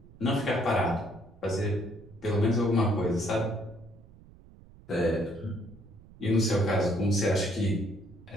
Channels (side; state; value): right; noise; rumble, 22 dB below the sound